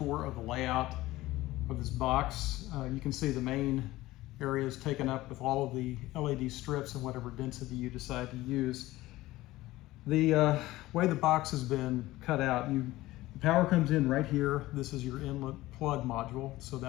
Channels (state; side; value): quieter; right; 17.5 dB